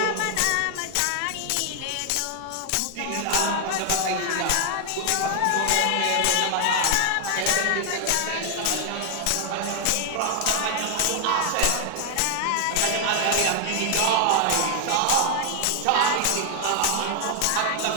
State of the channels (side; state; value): both; different; correlation 0.00